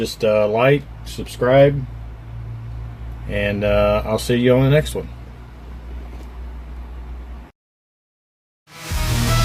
like, subscribe, and I'll see you on the next one.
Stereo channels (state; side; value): identical; both; correlation 1.00